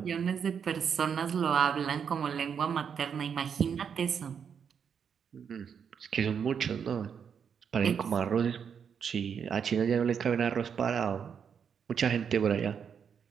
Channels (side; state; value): left; quieter; 7.2 dB